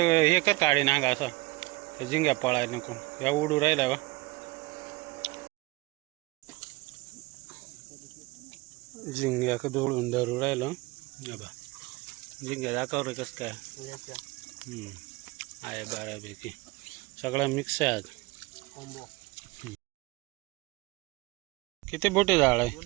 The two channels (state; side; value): quieter; left; 22.7 dB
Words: हे कर काढी नागा असं ते झिंग्या पळायला नको. या उडू राहिल्या बा झिंग्या का जोडून धरू राहिलं. बा झिंग्या दाखव रे कसं काय. आहे बऱ्यापैकी सगळं मिक्स आहे आज. किती बोटी जाळ